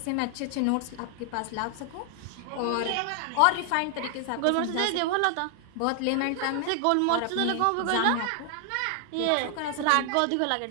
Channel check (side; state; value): both; different; correlation 0.00